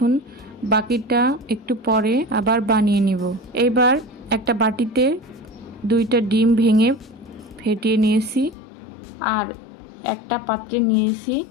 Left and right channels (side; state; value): right; drops out; at 8.6 s